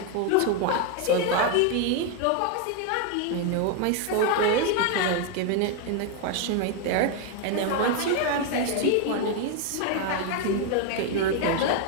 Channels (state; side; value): different; both; correlation 0.01